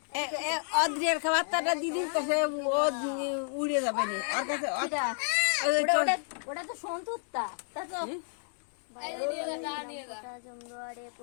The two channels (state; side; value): silent; right; digital silence